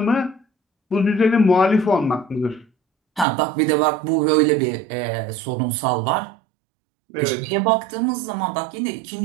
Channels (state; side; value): drops out; left; at 3.2 s